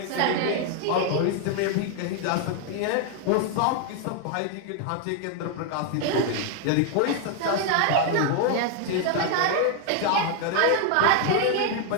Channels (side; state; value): both; different; correlation 0.00